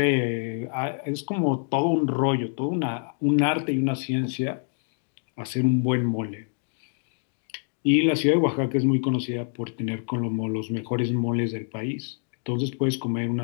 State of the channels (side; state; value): right; silent; 56 dB below the other